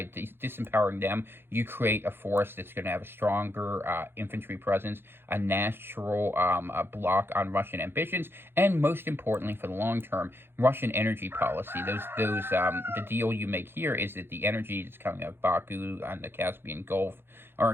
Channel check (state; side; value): late; left; 0.11 ms